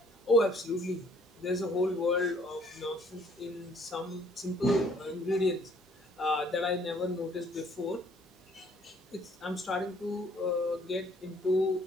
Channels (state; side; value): normal; both; correlation 0.61